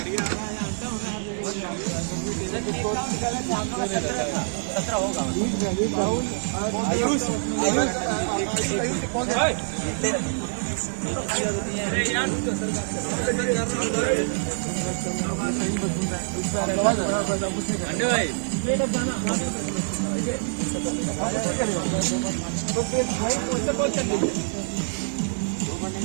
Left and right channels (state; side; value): silent; left; digital silence